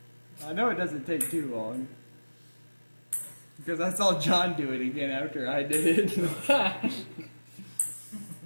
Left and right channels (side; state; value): both; inverted; correlation -1.00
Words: I know it doesn't take too long. Because I saw John do it again after I did it.